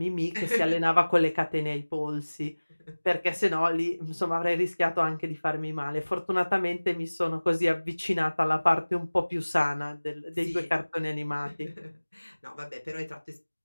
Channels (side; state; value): both; inverted; correlation -1.00